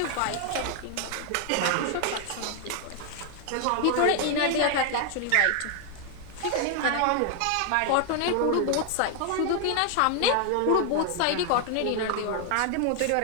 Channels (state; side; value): different; both; correlation 0.00